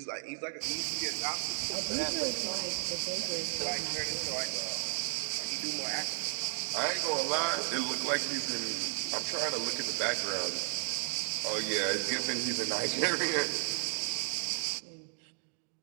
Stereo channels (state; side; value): silent; left; digital silence